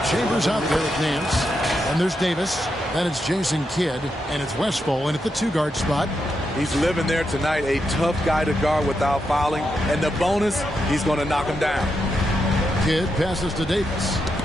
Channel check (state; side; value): normal; both; correlation 0.84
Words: Chambers out there with Nance. And there's Davis. Then it's Jason Kidd. And it's Westphal in at the 2-guard spot. He's living there tonight, a tough guy to guard without fouling. And the bonus, he's going to knock him down. Kidd passes to Davis.